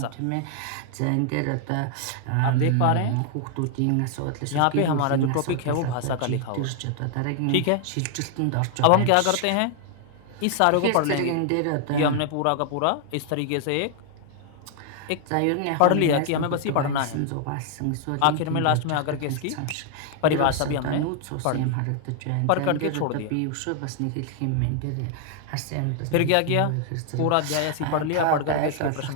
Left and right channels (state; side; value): different; both; correlation 0.00